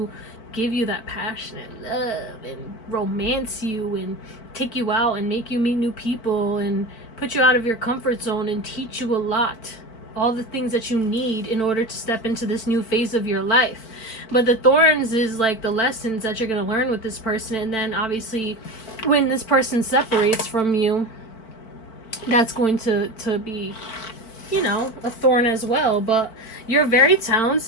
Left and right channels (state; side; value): late; right; 4.5 ms